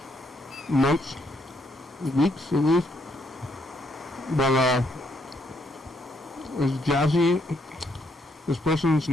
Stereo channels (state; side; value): normal; both; correlation 0.73